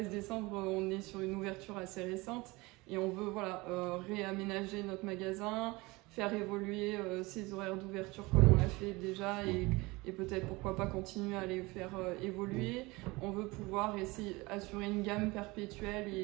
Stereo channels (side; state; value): left; quieter; 23.1 dB